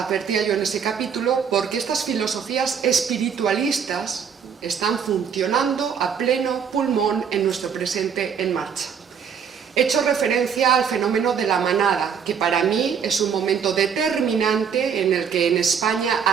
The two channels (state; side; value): quieter; left; 7.1 dB